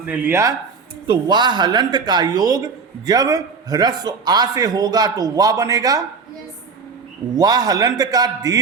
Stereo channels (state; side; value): quieter; left; 5.1 dB